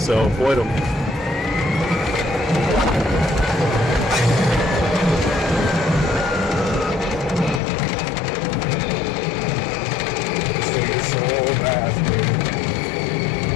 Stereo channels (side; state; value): right; drops out; at 7.6 s